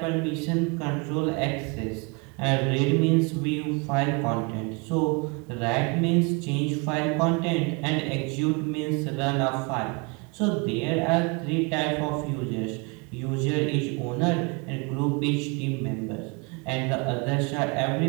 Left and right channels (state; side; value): quieter; left; 30.6 dB